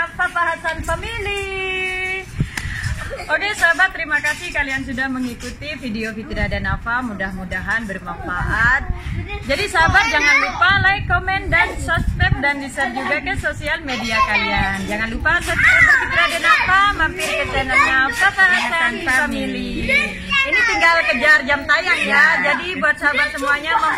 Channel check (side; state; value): both; identical; correlation 1.00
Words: Papa Hasan Family. Oke sahabat, terima kasih kalian sudah mengikuti video Fitri Adenafa. Mudah-mudahan bermanfaat. Jadi sahabat, jangan lupa like, komen, dan subscribe, dan di-share juga ke sosial media kalian. Jangan lupa subscribe Fitri Adenafa, mampir ke channelnya Papa Hasan Family. Ini tinggal kejar jam tayang ya. Jadi buat sahabat semuanya